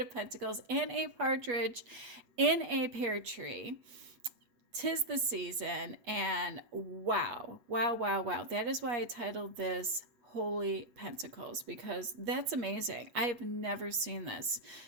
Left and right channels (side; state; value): left; late; 8.3 ms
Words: of Pentacles, and a partridge in a pear tree. 'Tis the season, and wow. That is why I titled this Holy Pentacles, because that's amazing. I have never seen this.